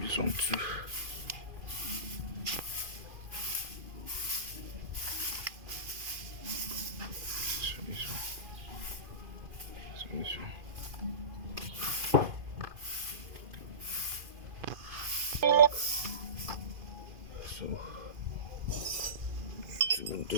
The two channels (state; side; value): late; left; 2.5 ms